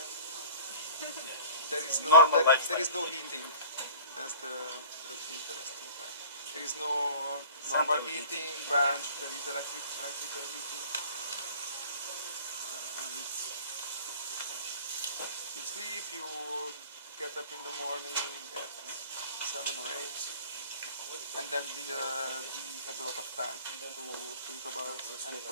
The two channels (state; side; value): inverted; both; correlation -0.45